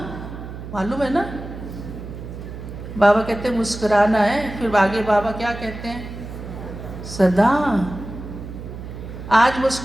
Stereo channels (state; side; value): noise; right; hum, 10 dB below the sound